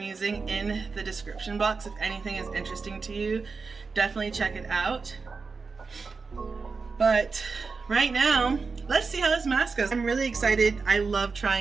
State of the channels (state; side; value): quieter; left; 4.6 dB